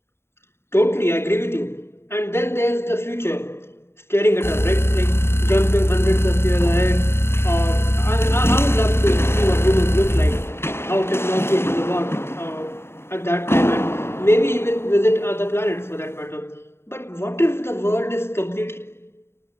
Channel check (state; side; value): late; right; 0.12 ms